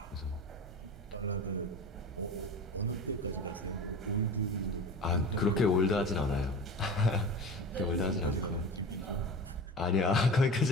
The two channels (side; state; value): both; normal; correlation 0.33